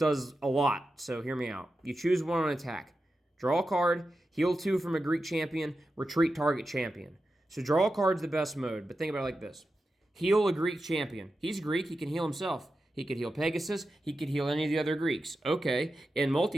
a lot, so hear me out. You choose 1 on attack. Draw a card, heal 2 from a Greek champion, retreat target champion. So draw a card's the best mode, but think about it like this. Heal a Greek champion. He's Greek, he can heal himself. He could heal Pegasus. He could heal any of the other Greeks. Okay, in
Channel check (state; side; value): normal; both; correlation 0.91